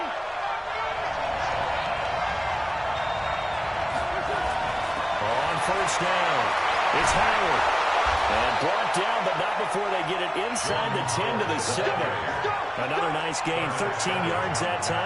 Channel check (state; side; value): identical; both; correlation 1.00